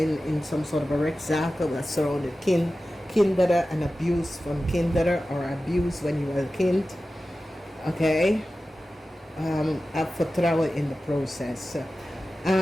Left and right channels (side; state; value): both; normal; correlation 0.95